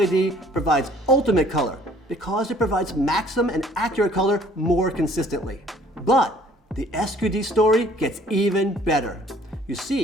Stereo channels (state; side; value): normal; both; correlation 0.57